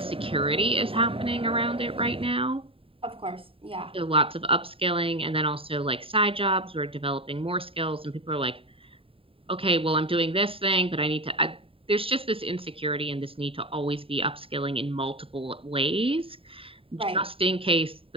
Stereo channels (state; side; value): late; left; 0.27 ms